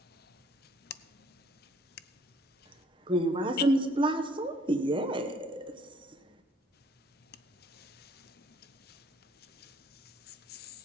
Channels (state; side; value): normal; both; correlation 0.61